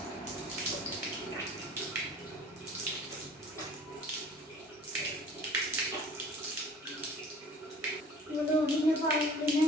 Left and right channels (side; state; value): both; normal; correlation 0.48